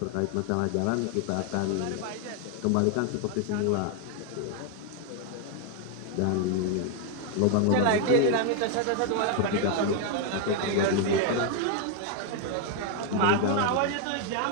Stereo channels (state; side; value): different; both; correlation 0.01